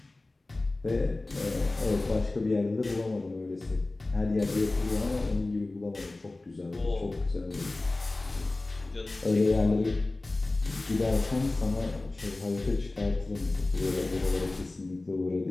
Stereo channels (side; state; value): right; quieter; 3.0 dB